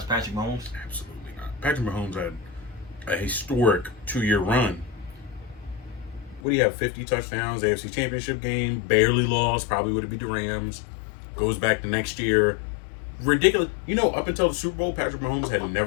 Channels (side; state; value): right; drops out; at 6.4 s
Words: Patrick Mahomes? Absolutely not. Patrick Mahomes had a historic 2-year run. what do you have? 50 touchdowns, AFC Championship game, barely lost, probably would have beat the Rams. Goes back the next year. Ridiculous. Up until the Super Bowl, Patrick Mahomes had